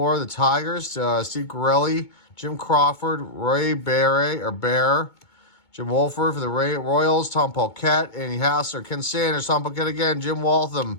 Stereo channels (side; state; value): right; late; 2.2 ms